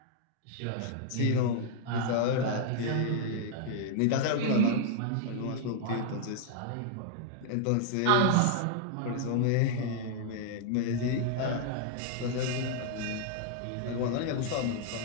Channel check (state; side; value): different; both; correlation -0.01